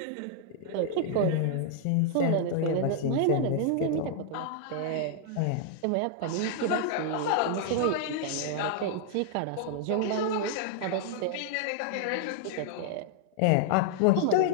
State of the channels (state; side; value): different; both; correlation -0.01